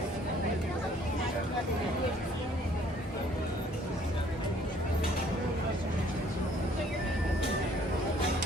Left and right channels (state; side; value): normal; both; correlation 0.60